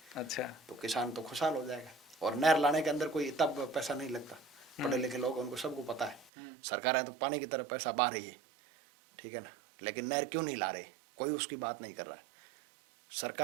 अच्छा, तो किसान तो खुशहाल हो जाएगा। और नहर लाने के अंदर कोई इतना पैसा नहीं लगता। पढ़े लिखे लोग, उनको सबको पता है। सरकारें तो पानी की तरह पैसा बहा रही है, ठीक है ना, लेकिन नहर क्यों नहीं ला रहे? कोई उसकी बात नहीं कर रहा है।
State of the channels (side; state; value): left; drops out; at 6.3 s